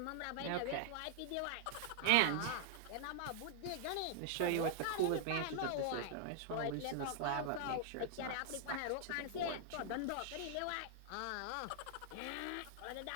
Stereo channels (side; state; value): both; different; correlation 0.00